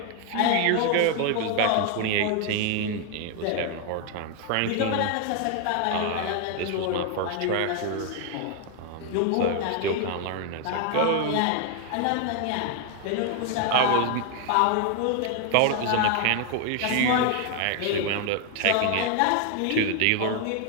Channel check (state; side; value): different; both; correlation 0.01